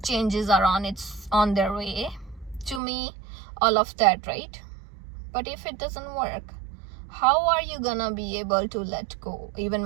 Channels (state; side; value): drops out; left; at 2.8 s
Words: changes are on their way to me, all of that, right? But if it doesn't work, how are you gonna be able to let go, even